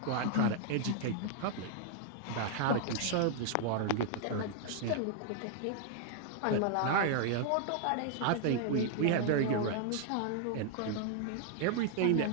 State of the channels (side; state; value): both; different; correlation 0.00